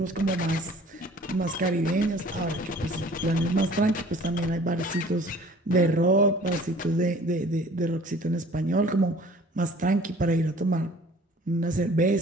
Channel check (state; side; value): normal; both; correlation 0.51